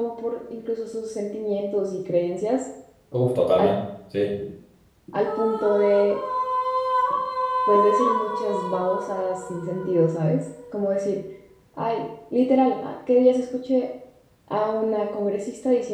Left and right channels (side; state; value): both; identical; correlation 1.00